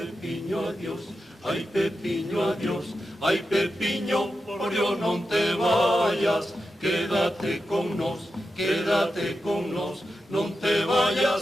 adiós, ai Pepiño, adiós, ai Pepiño, por Dios non te vayas, quédate con nos, non te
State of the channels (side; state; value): both; normal; correlation 0.90